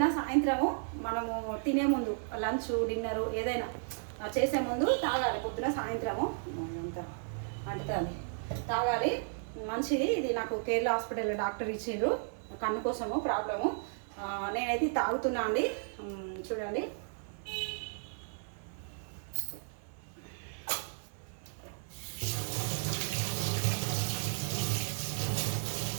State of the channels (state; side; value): silent; left; digital silence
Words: సాయంత్రము మనము తినే ముందు లంచ్ డిన్నరు ఏదైనా చేసే ముందు తాగాలి. పొద్దున సాయంత్రము అంత అంటుతుంది తాగాలి, మంచిది. ఇది నాకు కేరళ హాస్పిటల్లో డాక్టర్ ఇచ్చిండ్రు కన్ను కోసము ప్రాబ్లము. నేనైతే తాగుతున్నా అండి. చూడండి,